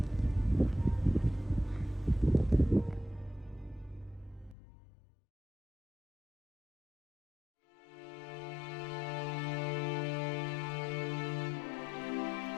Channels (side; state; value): right; drops out; at 4.5 s